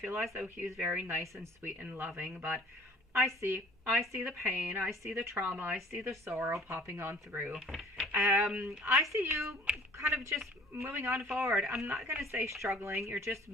as though he was very nice and sweet and loving, but I see the pain, I see the trauma, I see the sorrow popping on through. I see you kind of just moving on forward. I'm not going to say struggling, you're just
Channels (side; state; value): both; normal; correlation 0.51